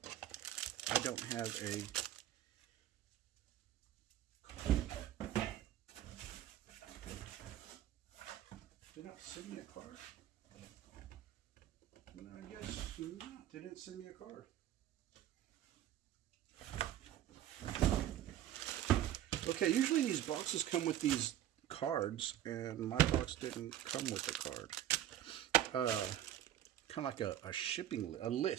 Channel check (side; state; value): left; quieter; 12.0 dB